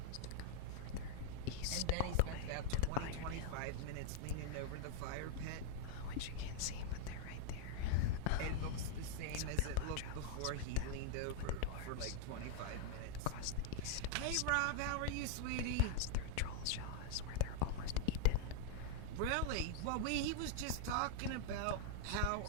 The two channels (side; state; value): both; different; correlation 0.00